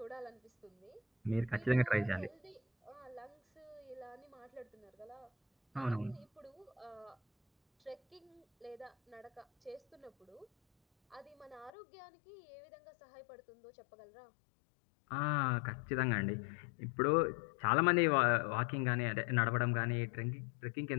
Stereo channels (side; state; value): right; drops out; at 11.7 s